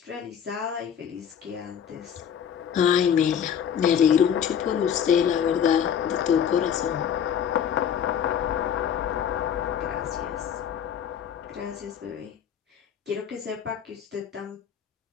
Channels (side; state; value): right; quieter; 8.4 dB